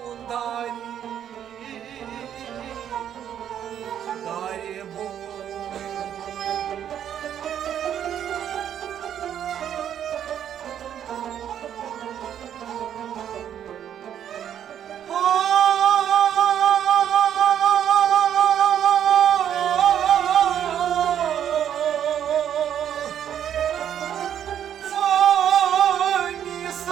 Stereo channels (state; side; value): quieter; left; 9.7 dB